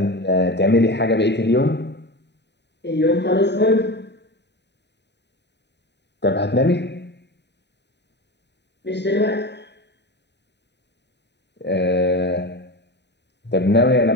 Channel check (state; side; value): late; right; 0.50 ms